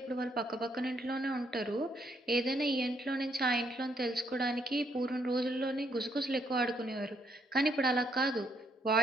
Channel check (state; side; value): normal; both; correlation 0.73